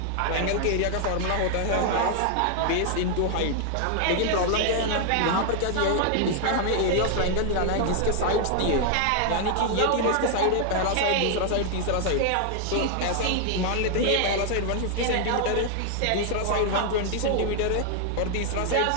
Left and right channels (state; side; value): different; both; correlation 0.00